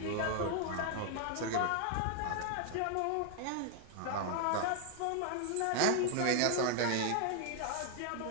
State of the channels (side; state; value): both; different; correlation 0.00